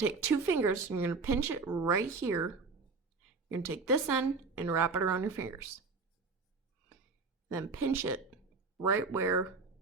take two fingers and you're going to pinch it right here. You're going to take this end and wrap it around your fingers. Then pinch it right where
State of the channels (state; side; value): quieter; left; 4.3 dB